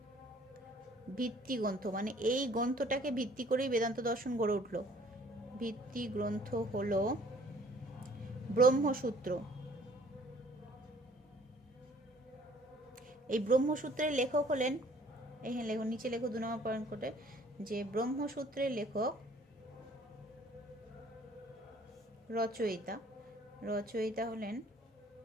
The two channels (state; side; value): normal; both; correlation 0.57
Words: ভিত্তিগ্রন্থ মানে এই গ্রন্থটাকে ভিত্তি করেই বেদান্ত দর্শন গড়ে উঠল। ভিত্তিগ্রন্থ হলো ব্রহ্মসূত্র। এই ব্রহ্মসূত্রের লেখক হলেন, এখানে লেখো, নিচে লেখো 2 নম্বর পয়েন্ট করে, যে ব্রহ্মসূত্রের লেখক রচয়িতা হলেন